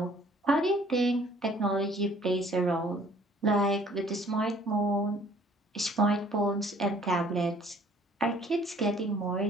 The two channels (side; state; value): both; normal; correlation 0.57